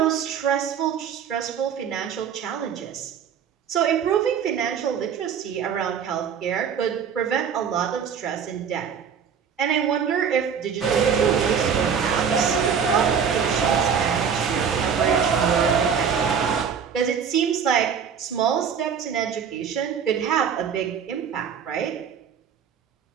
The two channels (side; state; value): left; quieter; 7.3 dB